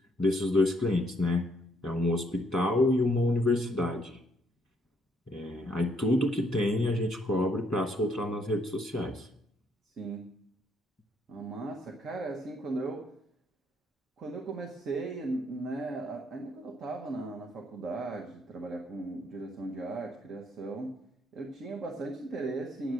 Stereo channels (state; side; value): normal; both; correlation 0.70